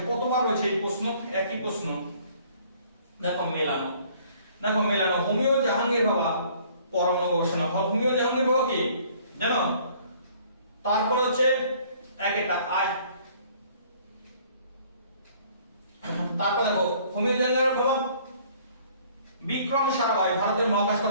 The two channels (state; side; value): inverted; both; correlation -0.57